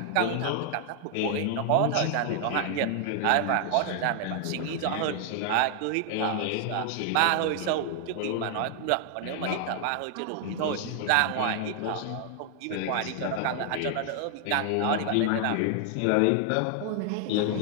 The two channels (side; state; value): both; different; correlation 0.00